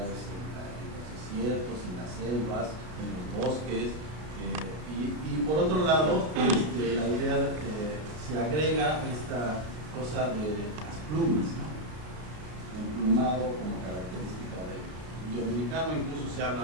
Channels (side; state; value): left; late; 33 ms